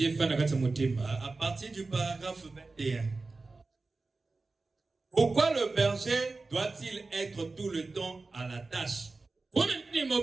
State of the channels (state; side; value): quieter; left; 3.6 dB